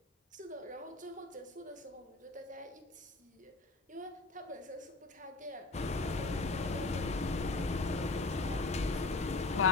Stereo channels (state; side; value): quieter; right; 3.2 dB